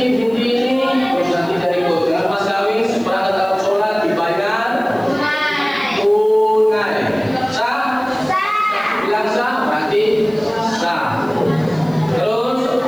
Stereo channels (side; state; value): left; noise; hiss, 27 dB below the sound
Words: binti ini, terus nanti dari ikut dengan mas kawin seperangkat alat sholat dibayar tunai. Sah? Bilang sah, berarti sah. Terus